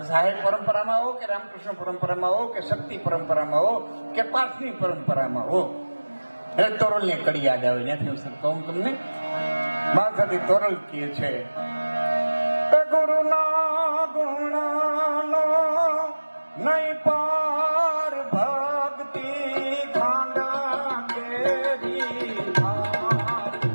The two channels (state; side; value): inverted; both; correlation -1.00